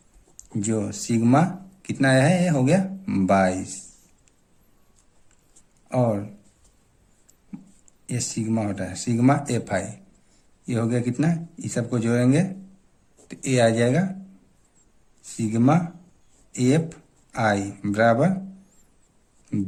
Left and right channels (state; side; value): identical; both; correlation 1.00